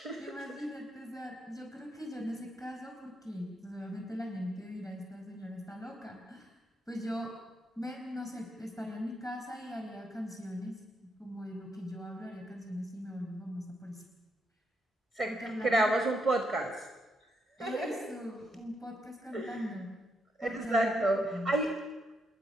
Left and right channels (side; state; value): both; normal; correlation 0.79